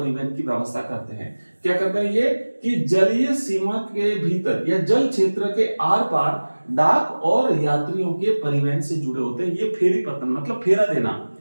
की व्यवस्था करते हैं। क्या करते हैं ये? कि जलीय सीमा के भीतर या जल क्षेत्र के आर पार डाक और यात्रियों के परिवहन से जुड़े होते हैं। ये फेरी पत्तन मतलब फेरा देना,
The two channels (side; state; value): both; inverted; correlation -1.00